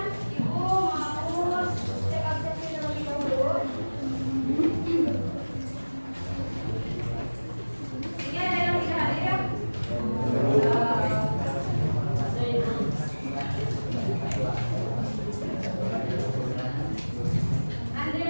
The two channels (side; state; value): both; inverted; correlation -1.00